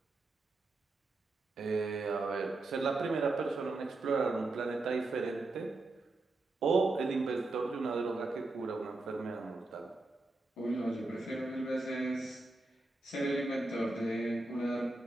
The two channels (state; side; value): quieter; left; 3.1 dB